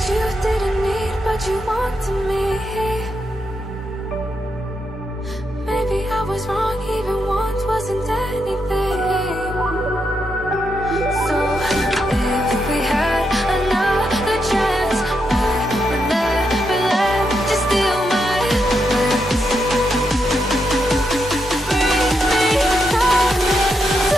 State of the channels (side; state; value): both; normal; correlation 0.82